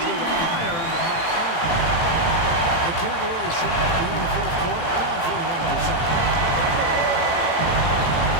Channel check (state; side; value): late; right; 18 ms